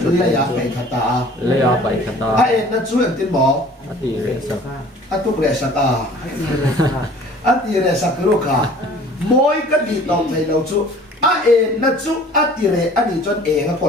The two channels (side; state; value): both; normal; correlation 0.49